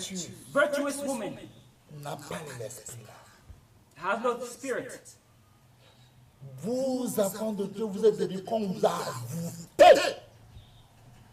Virtuous woman n'a pas l'esprit là. has no spirit. Vous, enfants de Dieu, vous êtes devenus comme vous avez.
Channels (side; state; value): both; identical; correlation 1.00